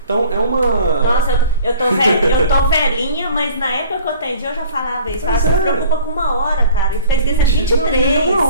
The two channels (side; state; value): both; inverted; correlation -0.48